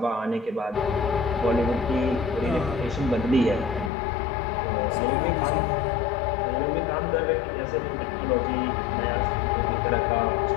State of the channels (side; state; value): right; drops out; at 3.9 s